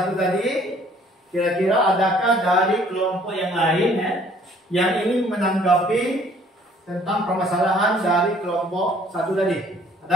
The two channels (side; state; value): both; normal; correlation 0.58